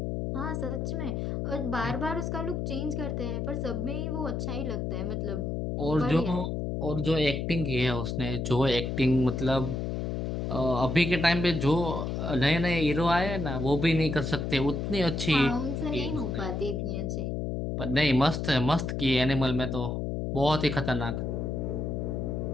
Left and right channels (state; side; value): noise; left; hum, 2 dB below the sound